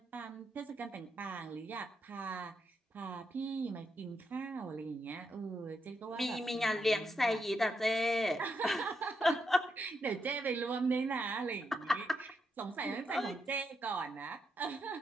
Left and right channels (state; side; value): normal; both; correlation 0.82